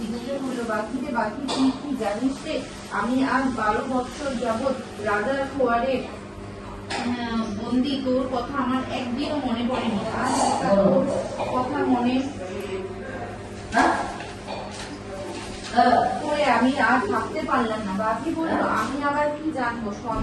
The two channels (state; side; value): identical; both; correlation 1.00